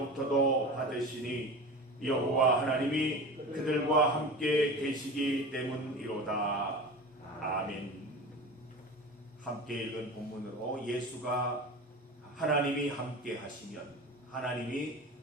받으시니 여호와 하나님이 그들과 함께 계시기 때문이로다. 아멘. 함께 읽은 본문으로 예수가 하나님이 함께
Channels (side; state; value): both; normal; correlation 0.32